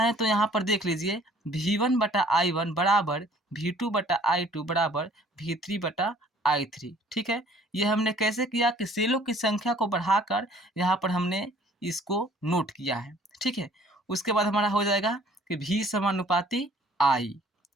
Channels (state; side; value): normal; both; correlation 0.56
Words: तो यहाँ पर देख लीजिए V1/I1 बराबर V2/I2 बराबर V3/I3। ठीक है, ये हमने कैसे किया कि सेलों की संख्या को बढ़ाकर यहाँ पर हमने इसको नोट किया है। ठीक है, उसके बाद हमारा हो जाएगा कि V समानुपाती I।